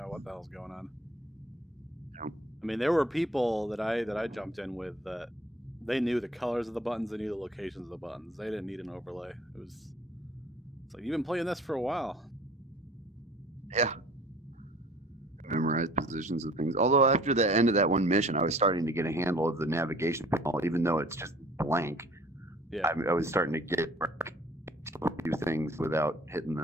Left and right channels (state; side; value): normal; both; correlation 0.51